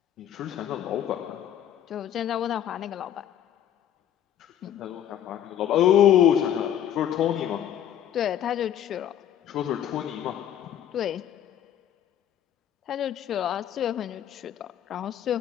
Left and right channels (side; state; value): right; quieter; 10.4 dB